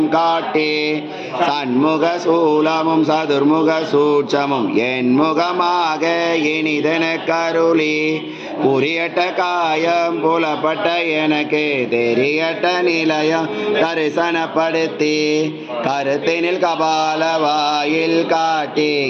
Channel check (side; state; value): both; identical; correlation 1.00